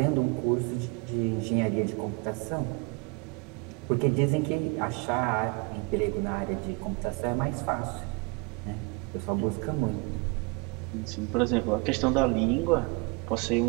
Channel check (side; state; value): left; quieter; 30.4 dB